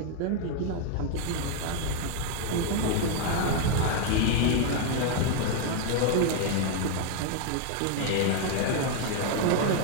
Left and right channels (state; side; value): different; both; correlation 0.00